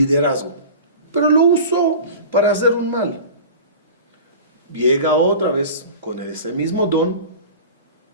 pero lo usó para hacer un mal. Llega otra vez con ese mismo don,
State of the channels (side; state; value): both; inverted; correlation -0.37